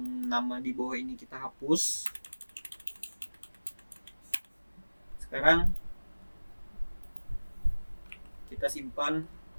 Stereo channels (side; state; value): both; inverted; correlation -1.00